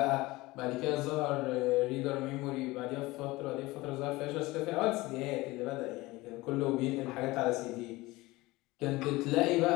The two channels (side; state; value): right; quieter; 20.5 dB